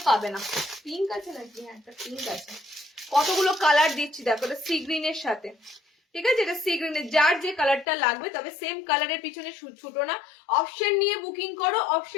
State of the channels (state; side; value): drops out; right; at 7.9 s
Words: পাবে না। পিঙ্ক আছে নাকি? হ্যাঁ একটা পিঙ্ক আছে। কতগুলো কালার দিচ্ছি দেখো, এটা সি গ্রিনের সাথে, ঠিক আছে, এটা সি গ্রিনের, যার যে কালারটা লাগবে, তবে সেম কালারের পিছনে ছুটো না, অপশন নিয়ে বুকিং করো।